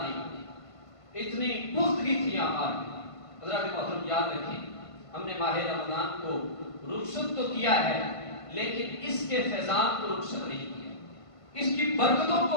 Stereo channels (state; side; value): late; right; 1.5 ms